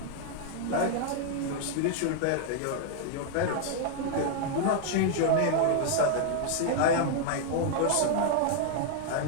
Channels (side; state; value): both; different; correlation 0.00